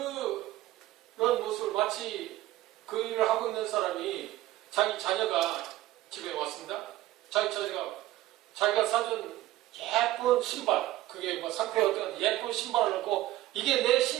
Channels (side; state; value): left; quieter; 15.7 dB